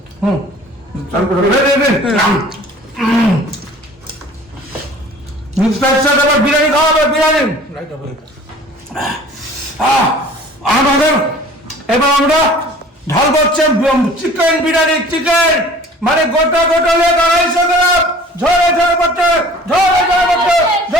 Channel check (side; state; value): both; normal; correlation 0.48